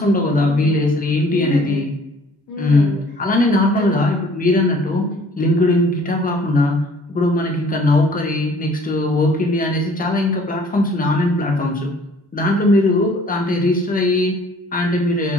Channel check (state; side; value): normal; both; correlation 0.55